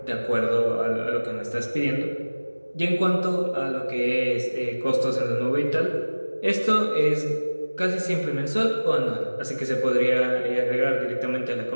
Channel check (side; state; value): both; inverted; correlation -1.00